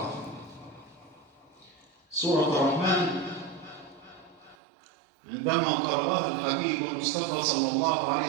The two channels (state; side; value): drops out; left; at 4.5 s